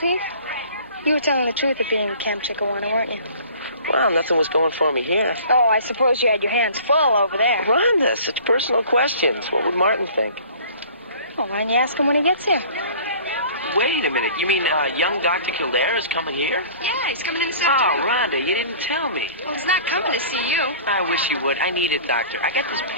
You were telling the truth at being at Camp Chiquiwana, weren't you? Well, nothing was going for me here. Oh, I suppose you had your hands full over there. Rhonda, such personal questions. What would Martin think? Well, why don't you ask him when he gets here? Wait a minute. You mean young Dr. Kildare is coming here? Yeah, he's coming in this Oh, afternoon. Rhonda, you didn't tell me. Well, he's not coming to see you. I wish you would. I need it, doctor. I got this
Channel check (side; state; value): both; inverted; correlation -0.47